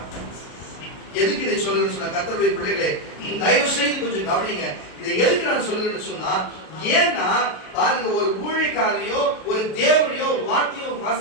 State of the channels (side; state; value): right; late; 33 ms